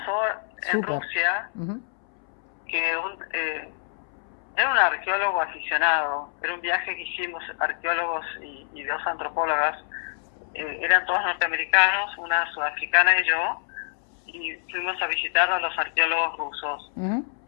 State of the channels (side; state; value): right; silent; 61 dB below the other